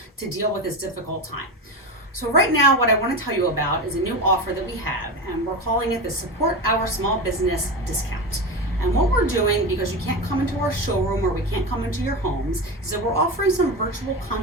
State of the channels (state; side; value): normal; both; correlation 0.21